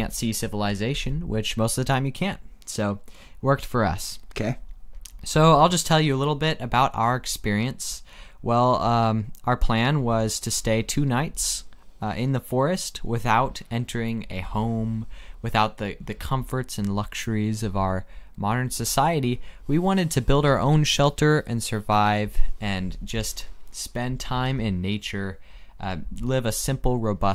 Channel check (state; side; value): identical; both; correlation 1.00